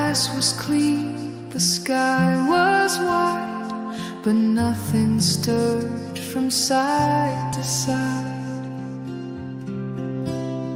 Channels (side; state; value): both; identical; correlation 1.00